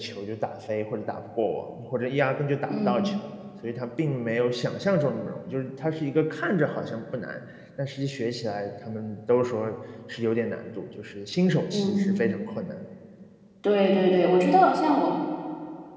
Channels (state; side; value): identical; both; correlation 1.00